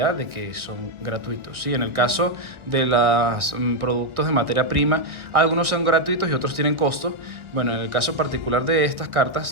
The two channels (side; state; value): left; late; 1.4 ms